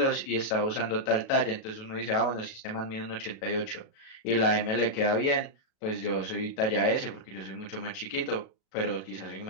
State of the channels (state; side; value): late; right; 37 ms